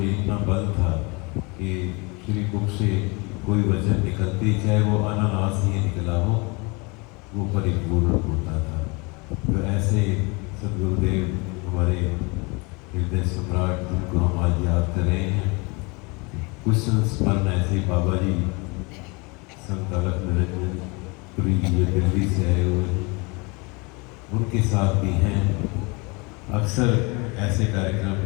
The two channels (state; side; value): quieter; right; 28.5 dB